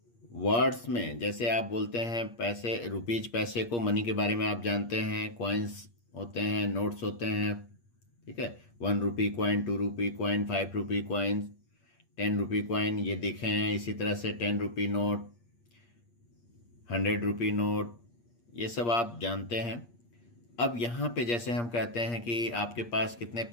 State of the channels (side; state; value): right; late; 8.5 ms